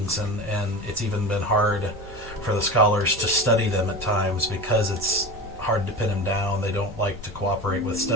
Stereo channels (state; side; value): normal; both; correlation 0.29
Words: and it's even been hard for the scholars to study them at times because it's hard to pin them down. They don't like to cooperate with